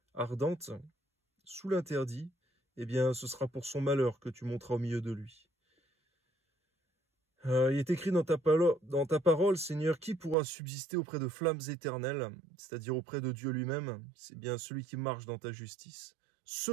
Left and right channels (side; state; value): left; drops out; at 10.4 s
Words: ardente, sous l'interdit, eh bien ce sera pour son malheur que tu monteras au milieu de lui. Il est écrit dans ta parole, Seigneur, qui pourra subsister auprès de flammes éternelles, c'est-à-dire auprès de Dieu lui-même? C'est bien celui qui marche dans ta justice,